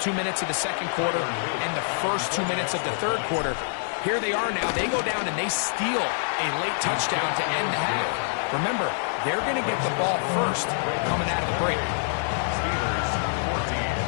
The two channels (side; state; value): right; silent; digital silence